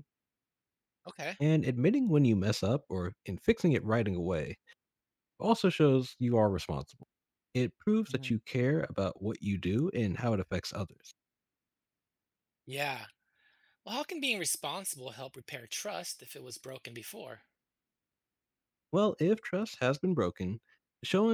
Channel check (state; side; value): identical; both; correlation 1.00